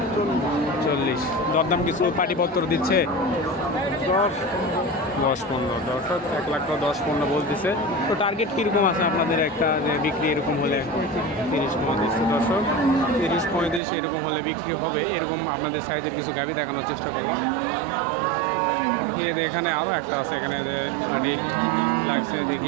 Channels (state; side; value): drops out; left; at 13.8 s